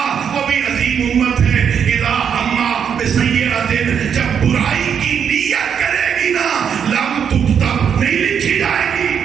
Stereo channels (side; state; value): left; quieter; 7.7 dB